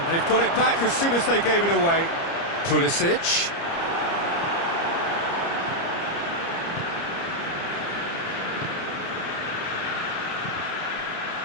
they've got it back as soon as they gave it away. Pulisic.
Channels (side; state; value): right; late; 30 ms